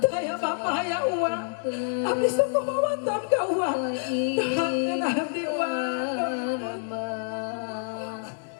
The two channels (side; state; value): right; silent; digital silence